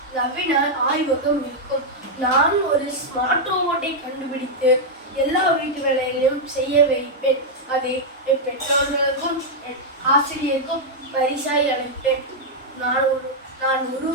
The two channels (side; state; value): both; normal; correlation -0.03